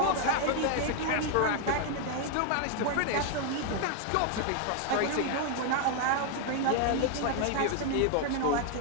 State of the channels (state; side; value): different; both; correlation 0.00